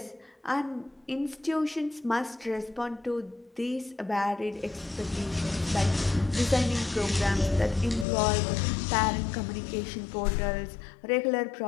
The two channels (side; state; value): right; drops out; at 8.1 s